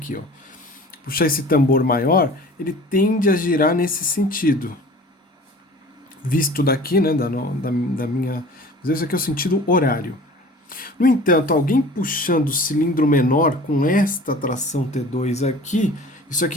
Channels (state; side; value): normal; both; correlation 0.44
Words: ó, puxar esse tambor maior, ele tende a girar nesse sentido. Visto daqui, né, da minha... Mas esse aqui é o sentido horário. No entanto, alguém puxando o cilindro menor com esta tração T2 aqui, isso